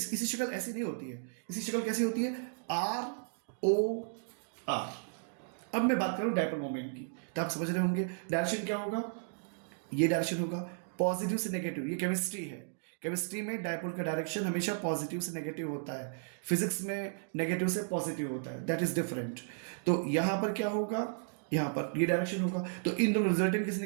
शक्ल ऐसी नहीं होती है। इसकी शक्ल कैसी होती है? ROR। अब मैं बात करूं डायपोल मोमेंट की, तो आप समझ रहे होंगे डायरेक्शन क्या होगा। ये डायरेक्शन होगा पॉजिटिव से नेगेटिव, ये केमिस्ट्री है केमिस्ट्री में डायपोल का डायरेक्शन हमेशा पॉजिटिव से नेगेटिव होता है, फिजिक्स में नेगेटिव से पॉजिटिव होता है, दैट इज डिफरेंट। तो यहाँ पर क्या होगा, यहाँ पर ये डायरेक्शन होगा, तो इन दोनों रिजल्टेंट किस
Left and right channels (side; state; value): left; silent; digital silence